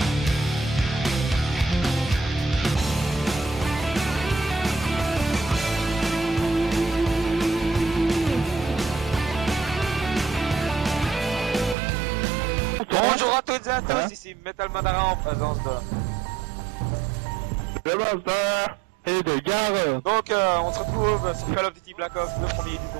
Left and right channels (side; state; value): left; drops out; at 11.8 s